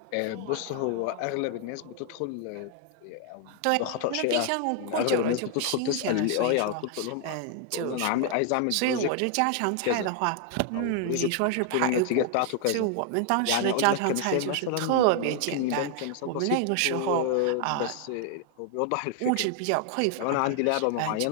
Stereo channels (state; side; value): different; both; correlation 0.00